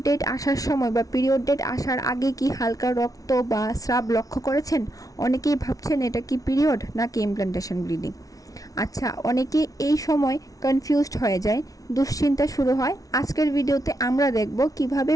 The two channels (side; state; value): right; late; 0.18 ms